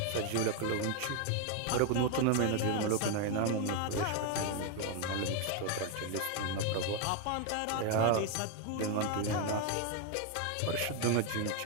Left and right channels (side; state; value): both; different; correlation 0.01